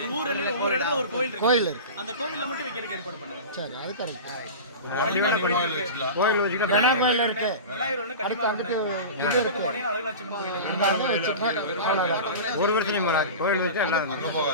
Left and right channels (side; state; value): both; inverted; correlation -0.30